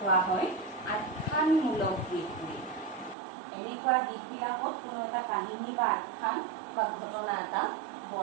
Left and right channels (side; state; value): left; drops out; at 3.2 s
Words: হয় আখ্যানমূলক গীত বুলি এনেকুৱা গীতবিলাকত কোনো এটা কাহিনী বা আখ্যান বা ঘটনা এটা